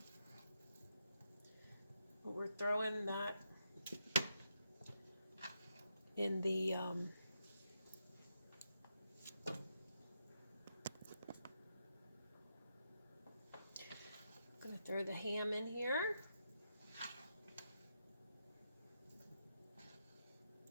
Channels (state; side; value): inverted; both; correlation -0.82